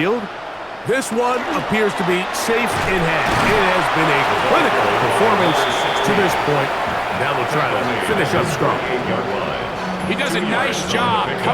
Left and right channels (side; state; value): both; identical; correlation 1.00